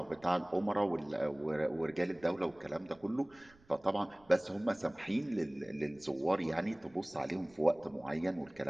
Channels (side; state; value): right; noise; rumble, 28 dB below the sound